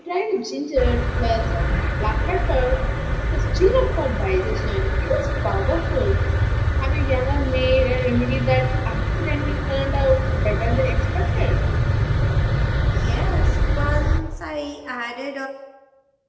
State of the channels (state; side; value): identical; both; correlation 1.00